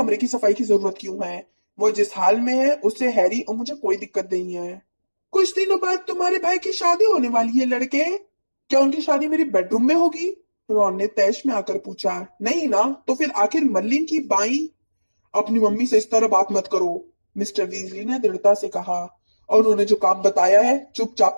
की सफाई की जरूरत क्यों है? वो जिस हाल में है उससे हैरी और मुझे कोई दिक्कत नहीं है। कुछ दिनों बाद तुम्हारे भाई की शादी होने वाली है लड़के। क्या उनकी शादी मेरे बेडरूम में होगी? रॉन ने तैश में आकर पूछा। नहीं ना, तो फिर आखिर मर्लिन की बाई? अपनी मम्मी से इस तरह बात मत करो, मिस्टर वीजली ने दृढ़ता से कहा, और उन्होंने जो काम बताया है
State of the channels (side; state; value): both; inverted; correlation -1.00